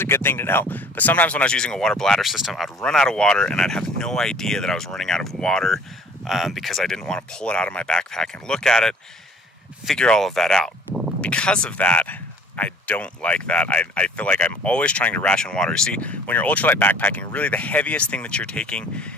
good thing to know. But sometimes when I was using a water bladder system, I'd run out of water and I'd have no idea that I was running out of water because I didn't want to pull it out of my backpack and look at it, figure all of that out. Because of that, I don't like that. I feel like I'm always trying to ration water. You see, when you're ultralight backpacking, really the heaviest thing that you're taking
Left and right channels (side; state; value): both; normal; correlation 0.52